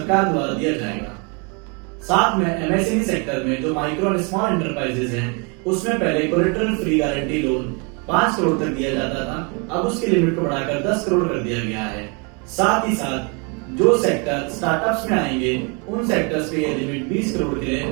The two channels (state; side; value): quieter; left; 33.7 dB